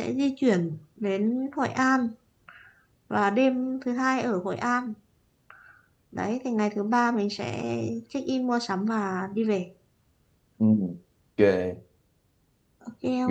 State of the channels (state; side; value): identical; both; correlation 1.00